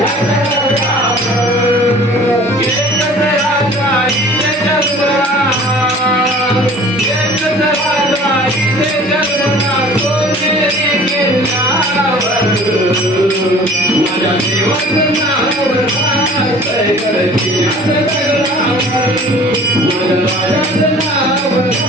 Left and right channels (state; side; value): normal; both; correlation 0.47